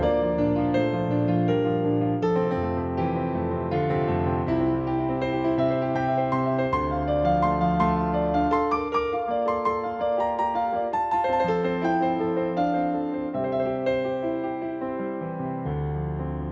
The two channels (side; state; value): both; identical; correlation 1.00